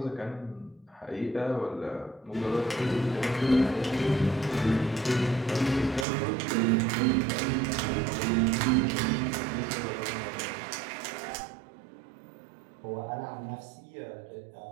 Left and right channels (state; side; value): drops out; left; at 6.1 s